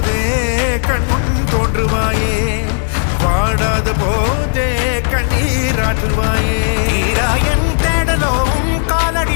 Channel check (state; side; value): silent; right; 58 dB below the other